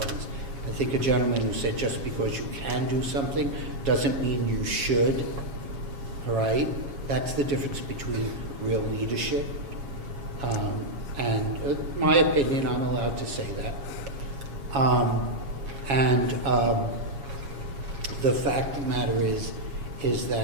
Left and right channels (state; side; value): late; left; 7.2 ms